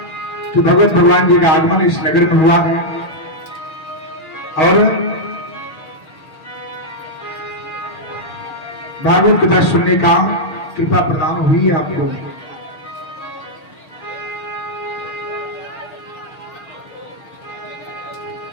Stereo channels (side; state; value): right; late; 6.3 ms